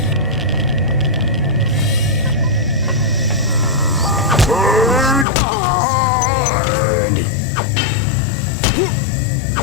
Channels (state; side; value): drops out; right; at 5.2 s